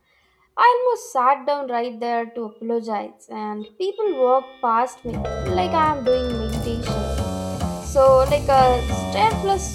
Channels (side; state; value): both; identical; correlation 1.00